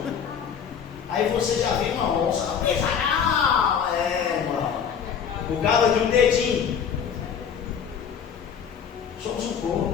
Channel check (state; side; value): quieter; right; 7.5 dB